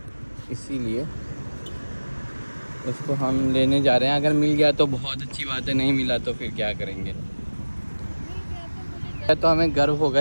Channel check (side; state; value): both; inverted; correlation -1.00